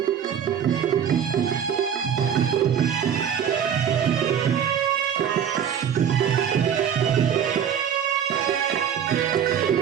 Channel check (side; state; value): left; quieter; 8.5 dB